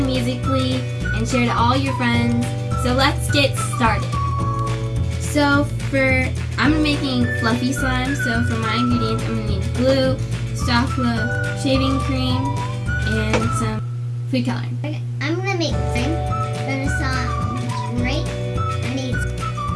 Musical.ly and share to all your friends. So let's get started. So I'm making fluffy slime. So for my ingredients, I'm gonna need glue, soft glue, shaving cream, and some food coloring. I'm gonna make slime. I'm gonna saw right. I need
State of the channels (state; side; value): identical; both; correlation 1.00